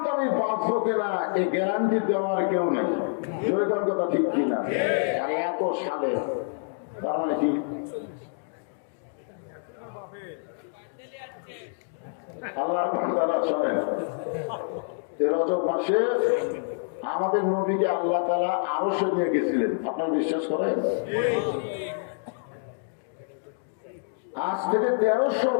আমি বাঁচবো কিনা, এই গ্যারান্টি দেওয়ার কেউ নেই। জয়গান কথা ঠিক কিনা? আর এত সালে তার মানে কি? আল্লাহর বান্দারা শোনেন, এই রজব মাসে আমাদের নবীকে আল্লাহ তাআলা আরশে নিয়ে গেছিলেন। আপনারা বিশ্বাস করেন? আজ থেকে 1300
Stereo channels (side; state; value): right; silent; digital silence